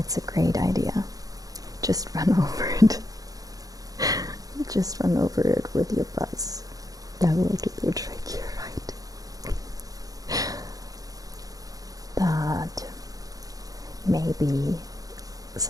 a great idea. Just run over it. Just run over it with your buzz. That will do the trick, you're right. That may be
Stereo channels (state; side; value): late; left; 0.17 ms